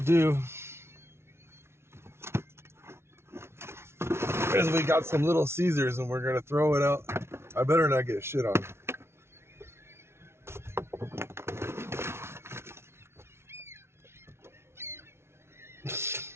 do is we got some Little Caesars and we're going to throw it out. I better not get shit on.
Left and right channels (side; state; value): left; late; 0.12 ms